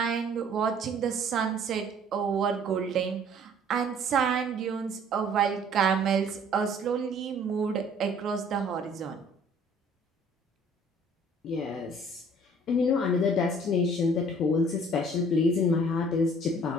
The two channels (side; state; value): both; normal; correlation 0.54